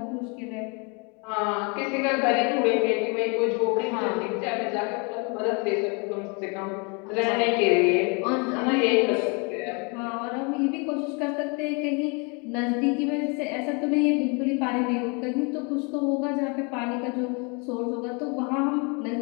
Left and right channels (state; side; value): quieter; right; 32.8 dB